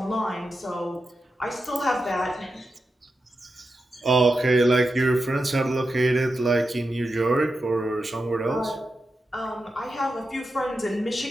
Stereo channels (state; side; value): normal; both; correlation 0.89